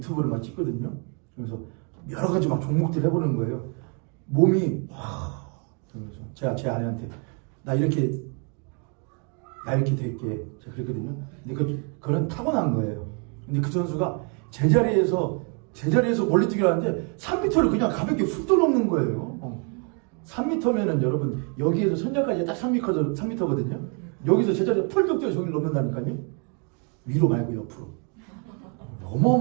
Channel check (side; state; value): left; quieter; 37.6 dB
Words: 막 찍거든요. 그래서 여러 가지 막 종목들 해보는 거예요. 몸이 그래서 제가 제 아내한테 나 이렇게 될게 제가 그랬거든요. 근데 그건 타고난 거예요. 근데 그 선수가 제자리에서 멀리뛰기를 하는데 3m를 그냥 가볍게 훅 넘는 거예요. 3m면은 여러분 여기에서 선장까지 딱 3m거든요. 여기서 제자리에 펄쩍 뛰어 저기를 넘는다니까요. 위로 말고 옆으로.